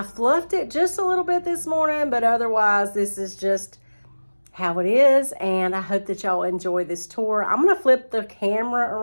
fluffed it just a little bit this morning, but otherwise this is just how it is, and I hope that y'all enjoy this tour. I'm going to flip the camera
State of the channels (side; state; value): both; inverted; correlation -1.00